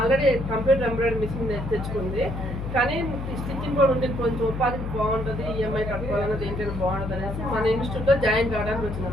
కంప్యూటర్ ఎంబ్రాయిడరీ మిషన్ తెచ్చుకుంది, కానీ స్టిచ్చింగ్ కూడా ఉంటే కొంచెం ఉపాధికి బాగుంటుంది, ఈఎంఐ కట్టుకోవాలన్నది ఏంటంటే బాగుంటుంది అనేసి మన ఇన్స్టిట్యూట్లో జాయిన్ కావడానికి వచ్చింది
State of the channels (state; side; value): noise; left; hum, 6 dB below the sound